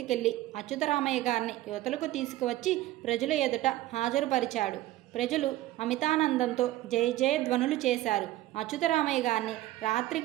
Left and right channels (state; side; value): quieter; left; 15.7 dB